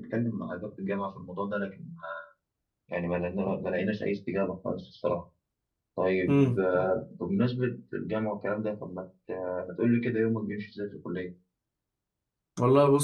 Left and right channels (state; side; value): identical; both; correlation 1.00